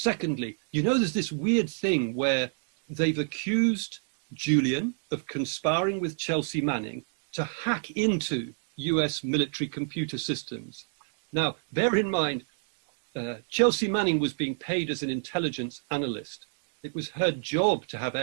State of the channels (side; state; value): left; silent; digital silence